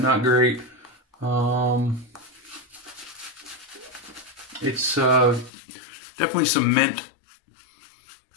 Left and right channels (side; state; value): right; drops out; at 5.5 s